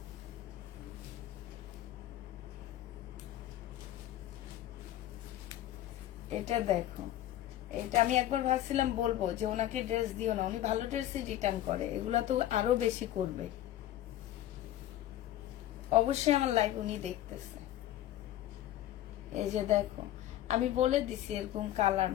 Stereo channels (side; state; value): right; quieter; 13.2 dB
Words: এটা দেখো, এটা আমি একবার ভাবছিলাম বলবো যে ওনাকে ড্রেস দিও না, উনি ভালো ড্রেসই রিটার্ন করে, এগুলা তো আরো বেশি করবে। অবশ্যই আমার লাইভ উনি দেখতেছে। এই যে দেখো, আমি বলে দিছি এরকম কালার,